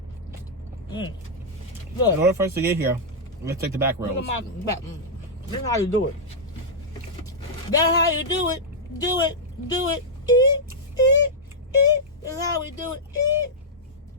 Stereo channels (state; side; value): normal; both; correlation -0.08